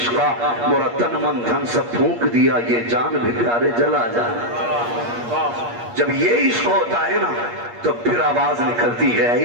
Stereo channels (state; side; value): late; left; 8.5 ms